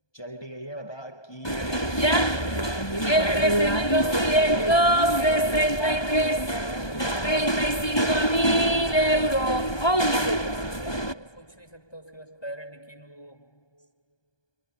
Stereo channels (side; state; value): right; late; 1.2 ms